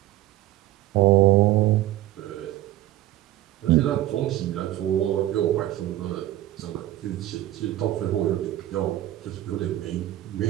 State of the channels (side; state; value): left; quieter; 14.7 dB